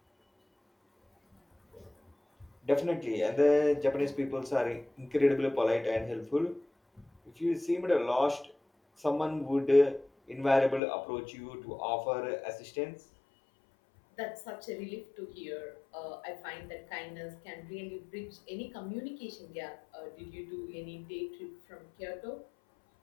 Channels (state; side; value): drops out; right; at 10.8 s